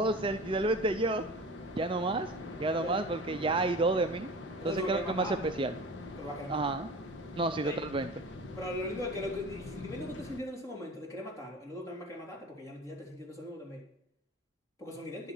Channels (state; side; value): normal; both; correlation 0.37